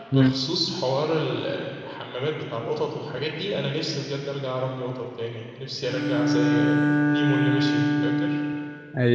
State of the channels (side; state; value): both; identical; correlation 1.00